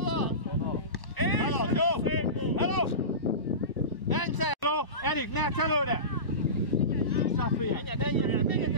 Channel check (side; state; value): right; late; 1.0 ms